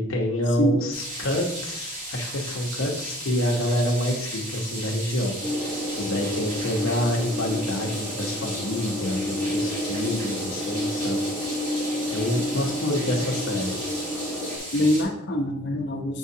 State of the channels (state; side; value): normal; both; correlation 0.54